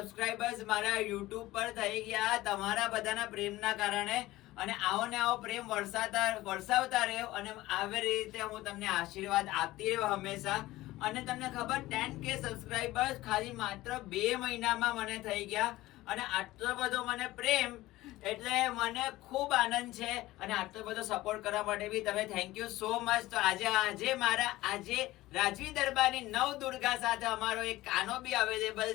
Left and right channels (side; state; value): right; quieter; 17.5 dB